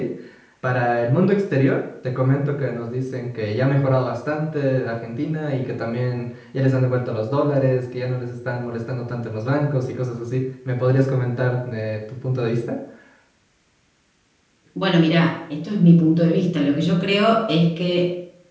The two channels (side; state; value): both; identical; correlation 1.00